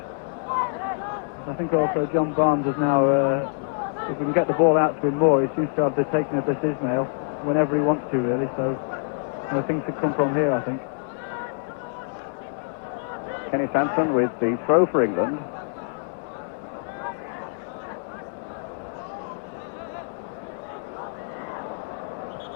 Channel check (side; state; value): right; silent; digital silence